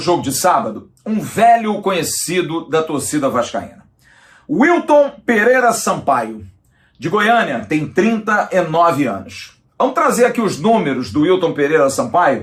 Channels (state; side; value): identical; both; correlation 1.00